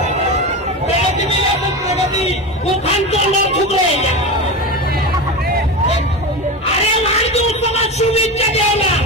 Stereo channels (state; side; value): normal; both; correlation 0.22